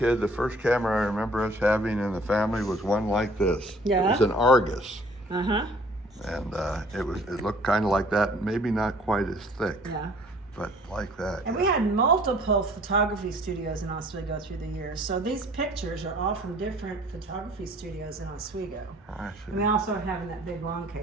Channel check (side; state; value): both; normal; correlation 0.55